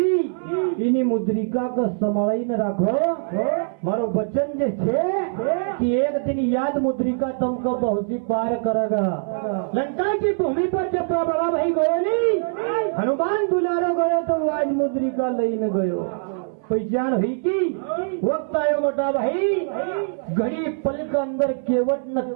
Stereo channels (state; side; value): silent; left; 60 dB below the other